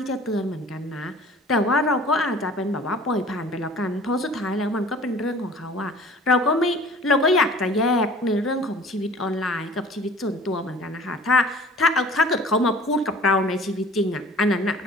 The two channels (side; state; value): both; normal; correlation 0.47